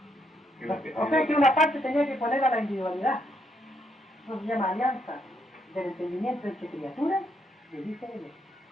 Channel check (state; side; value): normal; both; correlation 0.75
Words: O sea que una parte tenía que poner a la individualidad. Eso se llama alianza del entendimiento entre criaturas y el Hijo de Dios.